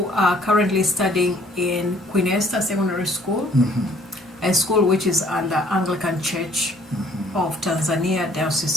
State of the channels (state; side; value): normal; both; correlation 0.60